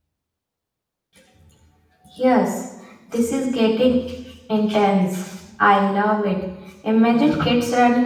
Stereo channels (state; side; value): identical; both; correlation 1.00